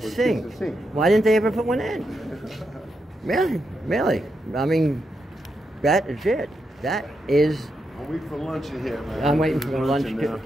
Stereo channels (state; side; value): normal; both; correlation 0.84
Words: Why didn't they ever put one in? Really. I mean, that is it. That is. I'm waiting for lunch in here, man. I'm waiting for lunch.